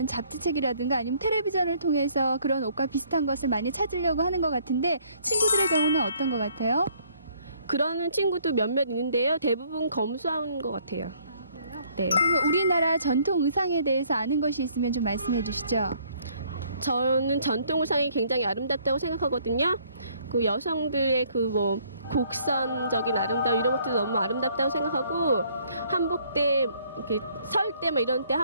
잡지책이라든가 아니면 텔레비전을 통해서 그런 옷과 비슷한 것을 많이 찾으려고 하는 것 같은데, 친구들의 경우는 어떤 것 같아요? 그러는 친구도 몇몇 있는데요. 대부분 검소한 것 같아요. 네. 그러면 우리나라 전통 의상에 대해서 아는 것이 있으면 좀 말씀해 주시죠. 저는 전통 의상이 굉장히 아름답다고 생각하거든요. 그 여성들의 그 뭐 곡선적인 아름다움 이런 것도 너무 아름답다고 생각하고, 한복 때 이렇게 설 때 막 이런 때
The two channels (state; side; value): inverted; both; correlation -0.63